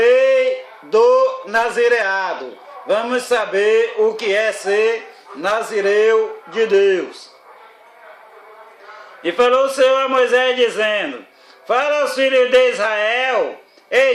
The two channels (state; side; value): identical; both; correlation 1.00